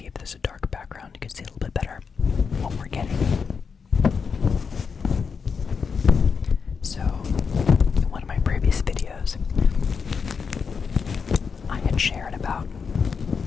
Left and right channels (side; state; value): right; quieter; 5.8 dB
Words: if there's a dark background, you can see a little bit better what we're getting. So, in one of my previous videos, I had shared about